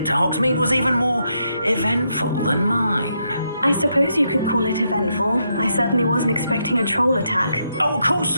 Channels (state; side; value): inverted; both; correlation -0.80